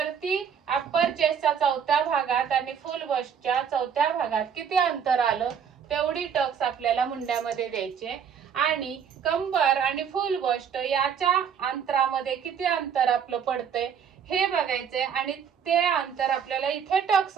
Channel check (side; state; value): left; quieter; 7.6 dB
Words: अप्पर चेस्टच्या चौथ्या भागात आणि फुल बस्टच्या चौथ्या भागात किती अंतर आलं तेवढी टक्स आपल्याला मुंड्यामध्ये द्यायचे. आणि कंबर आणि फुल बस्ट याच्या अंतरामध्ये किती अंतर आपलं पडतंय हे बघायचंय आणि ते अंतर आपल्याला इथे टक्स